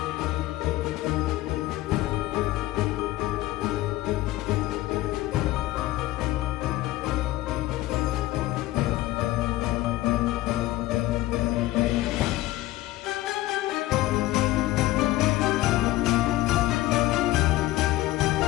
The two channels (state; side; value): quieter; right; 17.0 dB